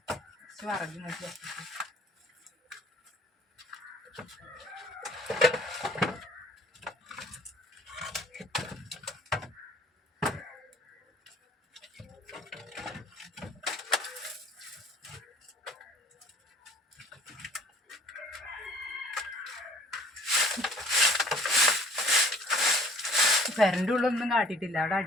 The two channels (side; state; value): both; normal; correlation 0.53